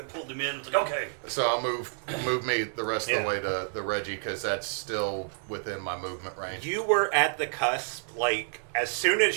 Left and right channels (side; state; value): left; silent; digital silence